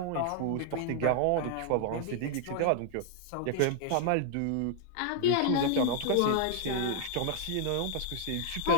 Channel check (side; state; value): both; different; correlation -0.01